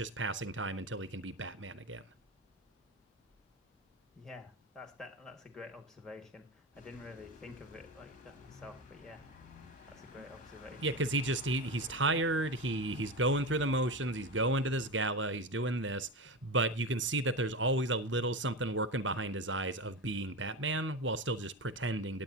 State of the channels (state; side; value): normal; both; correlation 0.21